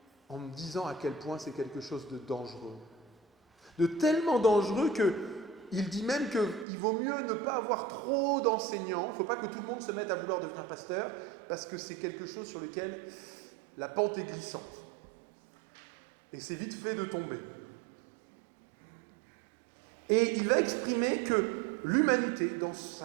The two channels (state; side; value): drops out; left; at 6.7 s